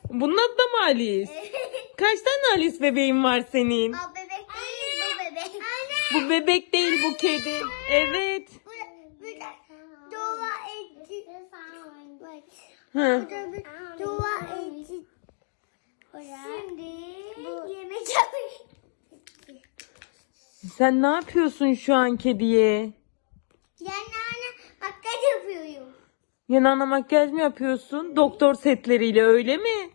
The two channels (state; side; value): silent; right; digital silence